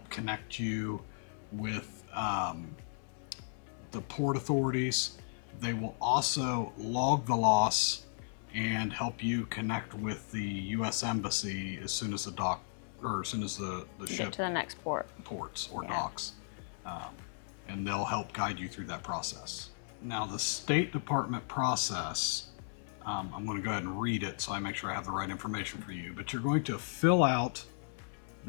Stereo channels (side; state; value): right; silent; 54 dB below the other